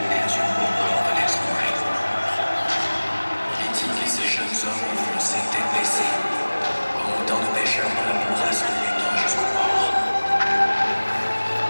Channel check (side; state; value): both; inverted; correlation -1.00